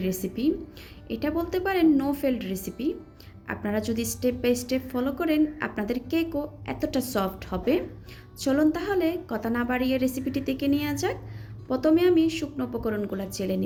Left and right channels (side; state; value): both; identical; correlation 1.00